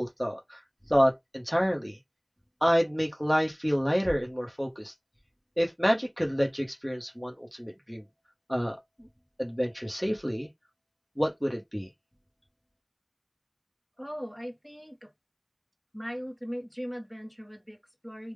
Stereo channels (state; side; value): identical; both; correlation 1.00